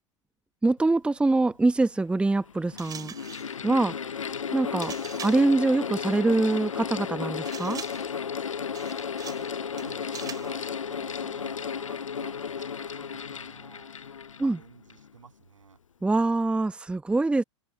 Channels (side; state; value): both; normal; correlation 0.78